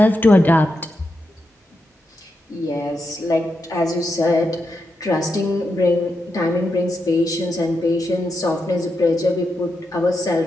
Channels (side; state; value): both; normal; correlation 0.86